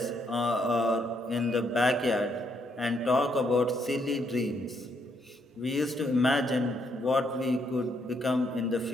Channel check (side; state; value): both; normal; correlation 0.74